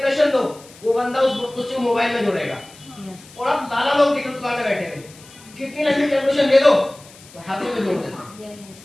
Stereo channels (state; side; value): noise; left; hiss, 22 dB below the sound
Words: दो, वो बंदा उसको मोबाइल में जोड़ेगा। और आप दादा लोग दिख दुकान में बैठे हैं, कितनी लंबी कैलकुलेशन दे दो तो हाथों में जोड़ देते।